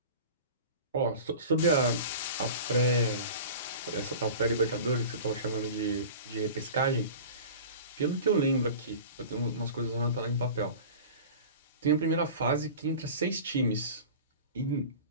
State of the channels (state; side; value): inverted; both; correlation -0.37